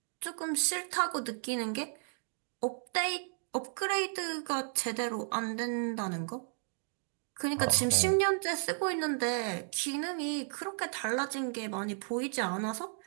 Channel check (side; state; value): left; silent; 55 dB below the other